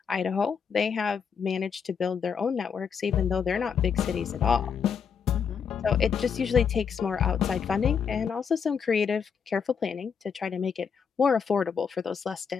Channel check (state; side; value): quieter; right; 6.7 dB